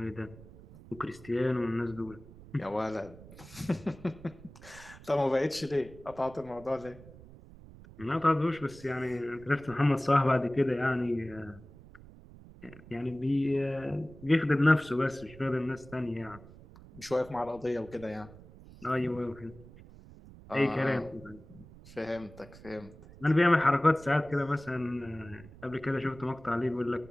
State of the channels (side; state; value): right; noise; rumble, 19 dB below the sound